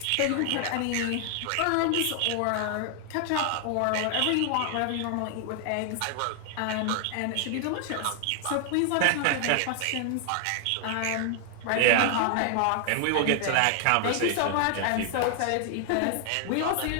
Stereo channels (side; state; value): both; different; correlation 0.00